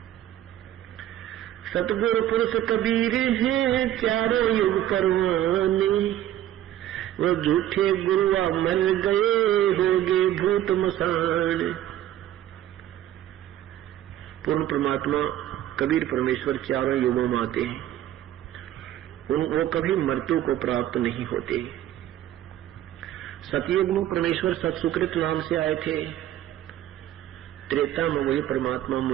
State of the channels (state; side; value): quieter; left; 12.5 dB